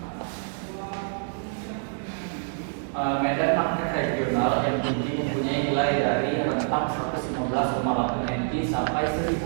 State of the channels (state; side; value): silent; left; digital silence